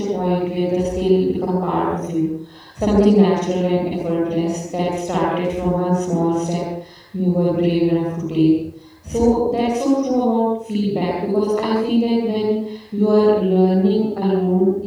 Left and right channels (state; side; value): identical; both; correlation 1.00